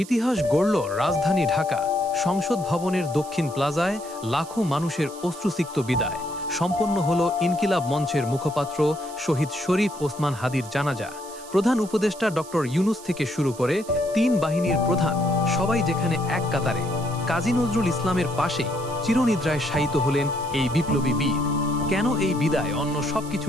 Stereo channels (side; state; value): right; noise; hiss, 17 dB below the sound